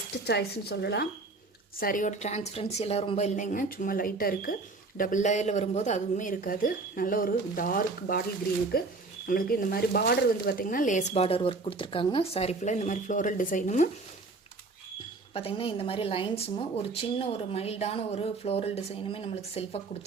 சாய்ஸ்ன்னு சொல்லலாம். சாரியோட டிரான்ஸ்பரன்சி எல்லாம் ரொம்ப இல்லைங்க, சும்மா லைட்டாக இருக்குது. டபுள் லேயரில் வரும்போது அதுவுமே இருக்காது. நல்ல ஒரு டார்க் பாட்டில் க்ரீனுக்கு நம்மளுக்கு இந்த மாதிரி பார்டர் வந்து பார்த்திங்கன்னா லேஸ் பார்டர் ஒர்க் கொடுத்துருக்காங்க. சாரீ ஃபுல்லாக இந்த மாதிரி ஃப்ளோரல் டிசைனும் பார்த்திங்கன்னா இந்த மாதிரி லைன்ஸும் ஒரு சின்ன ஒரு மைல்டான ஒரு ஃப்ளோரல் டிசைனுமே நம்மளுக்கு செல்ஃபாக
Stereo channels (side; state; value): left; quieter; 3.6 dB